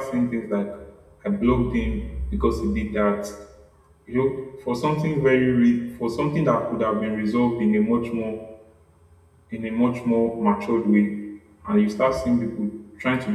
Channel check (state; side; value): identical; both; correlation 1.00